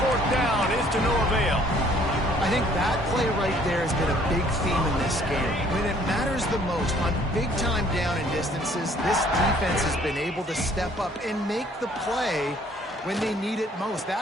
down is to no avail. I think that play right there has been a big theme in this game. When it matters the most, on big-time down and distances, this defense has been able to step up and make the play when they need it most.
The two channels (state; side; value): normal; both; correlation 0.59